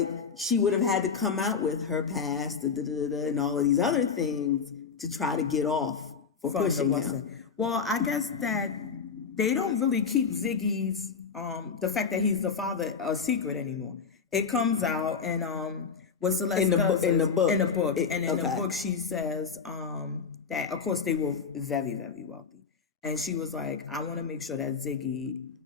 she would have had to come out with her past and all of these other things to try to get off for pushing him. Well, I guess that they don't really keep Ziggy's the fact that he's the father a secret anymore. It comes out, and what Celeste does in the book, and in the book she says that of course they were very, very wealthy, and she was like, I want to make sure that Ziggy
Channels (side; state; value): right; quieter; 5.8 dB